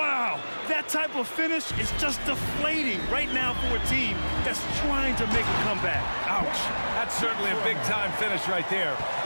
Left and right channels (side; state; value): both; inverted; correlation -1.00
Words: that type of finish is just deflating right now for a team that's trying to make a comeback. Ouch. That's certainly a big-time finish right there.